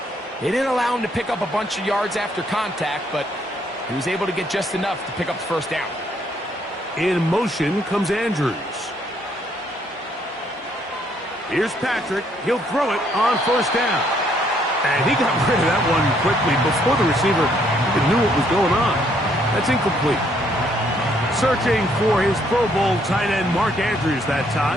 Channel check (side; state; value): both; normal; correlation 0.69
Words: they didn't allow him to pick up a bunch of yards after contact, but he was able to get just enough to pick up the first down. In motion comes Andrews. Here's Patrick. He'll throw it on first down. And he got rid of that one quickly before the receiver even knew what was going on. That's incomplete. Searching for his Pro Bowl tight end Mark Andrews that